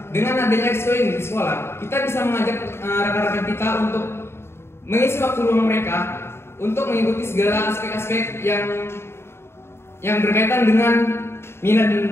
Dengan adanya ekskul ini di sekolah, kita bisa mengajak rekan-rekan kita untuk mengisi waktu luang mereka untuk mengikuti segala aspek-aspek yang berkaitan dengan minat dan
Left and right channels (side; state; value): right; late; 0.12 ms